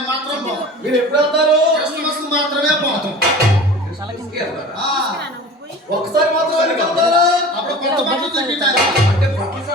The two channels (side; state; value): both; normal; correlation 0.38